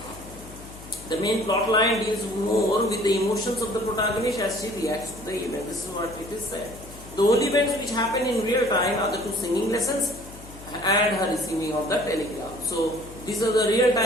The main plot line deals more with the emotions of the protagonist as she reacts to the event. This is what it is said. The only events which happen in real time are the 2 singing lessons and her receiving of the telegram. So these are the real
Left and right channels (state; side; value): noise; left; hum, 17 dB below the sound